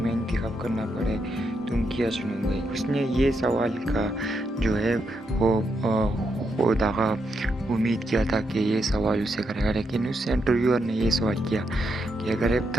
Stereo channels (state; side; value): normal; both; correlation 0.81